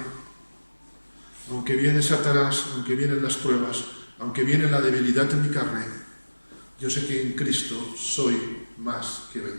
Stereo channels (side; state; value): both; inverted; correlation -1.00